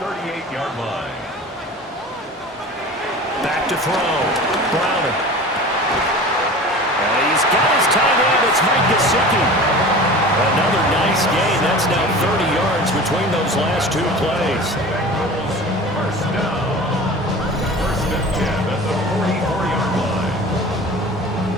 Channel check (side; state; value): both; normal; correlation 0.38